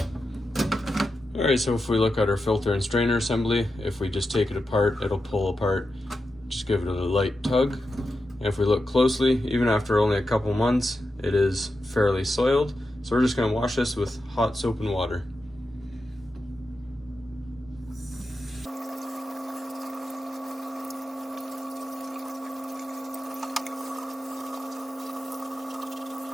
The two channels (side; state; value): both; normal; correlation 0.89